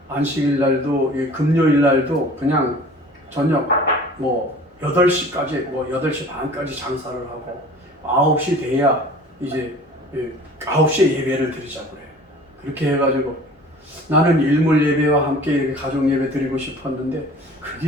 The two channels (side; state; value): both; normal; correlation 0.45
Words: 안식일 날도 금요일 날도 그냥 저녁 8시까지 8시 반까지 장사를 하고 9시 돼야 이제 9시에 예배를 드리자고 그래. 그렇게 해가지고 나는 일몰 예배와 함께 이렇게 가족 예배 드리고 싶었는데